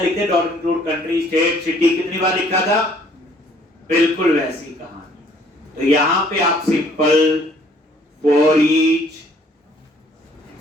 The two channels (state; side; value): normal; both; correlation 0.60